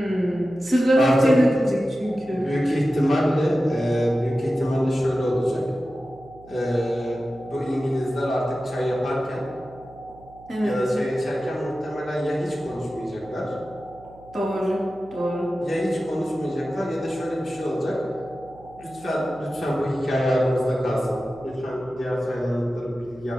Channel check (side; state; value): right; noise; hum, 22 dB below the sound